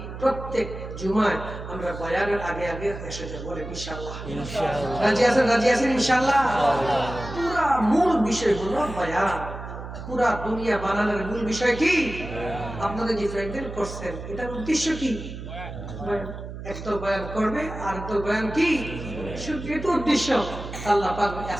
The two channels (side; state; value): right; noise; hum, 10 dB below the sound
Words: প্রত্যেক জুমায় আমরা বয়ানের আগে আগে এসে যাব। বলেন ইনশাআল্লাহ। রাজি আছেন? রাজি আছেন ইনশাআল্লাহ। পুরা মূল বিষয় হলো বয়ান। পুরা দুনিয়া বানানোর মূল বিষয় কি? আপনাদের যে প্যান্ডেল করছেন এটার উদ্দেশ্য কি? একদল বয়ান করবে আর একদল বয়ান কি? শুধু এটা উদ্দেশ্য। আল্লাহ পাক